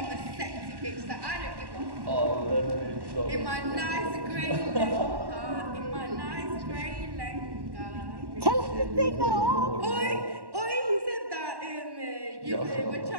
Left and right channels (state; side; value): late; left; 1.1 ms